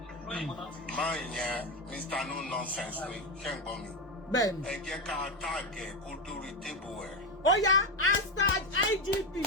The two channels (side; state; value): both; normal; correlation 0.13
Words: máa yẹn Mr. No Nonsense pé ṣẹ́gun mi. bẹ́ẹ̀ni. ẹ jẹ́ ká táàgẹ̀ kó dórí tébù ẹ̀. ó yá hashtag IGP